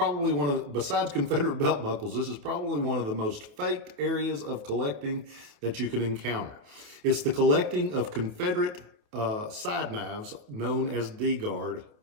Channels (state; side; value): late; left; 28 ms